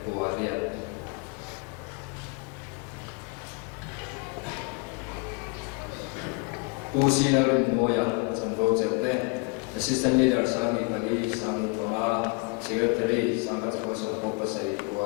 Guarel. Pusi Larin Moya, Zanvo Jete, Assistant Leader Sangi Pani, Sangi Pama, Secretary Saka Japosum Popasari,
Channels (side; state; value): right; quieter; 31.6 dB